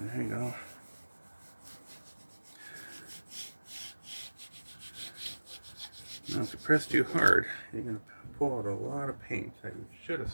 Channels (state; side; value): inverted; both; correlation -1.00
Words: you go. Now, if you press too hard, you're going to pull out a lot of paint that you should have